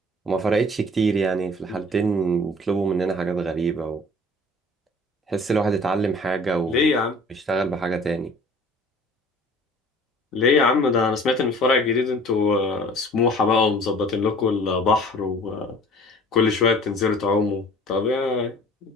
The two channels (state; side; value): normal; both; correlation 0.48